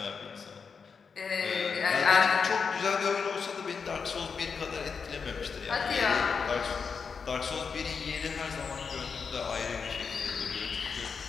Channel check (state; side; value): quieter; right; 5.7 dB